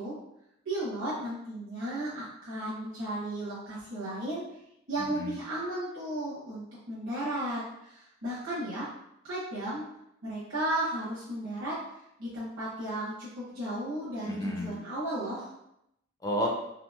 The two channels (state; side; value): normal; both; correlation 0.35